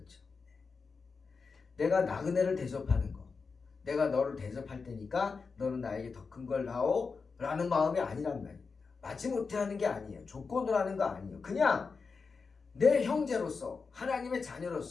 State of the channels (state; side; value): quieter; right; 4.9 dB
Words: 내가 나그네를 대접하는 거. 내가 너를 대접할 테니까 너는 나에게 더 큰 걸 다오 라는 마음이 아니란 말입니다. 마지못해 하는 게 아니에요. 조건으로 하는 거 아니에요. 그냥 내 형제로서 하나님의